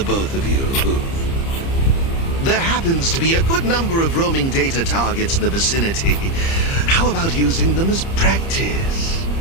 both of you. There happens to be a good number of roaming data targets in the vicinity. How about using them as practice?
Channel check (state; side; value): late; right; 30 ms